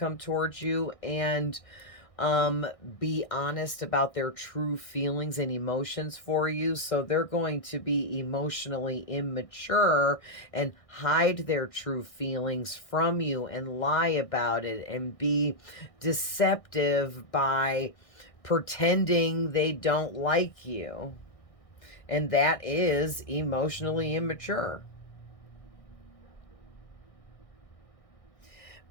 towards you, and be honest about their true feelings and emotions for you. So they're going to be emotionally immature and hide their true feelings from you and lie about it and be deceptive by pretending they don't like you. And that is emotionally immature.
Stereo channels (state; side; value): late; right; 1.6 ms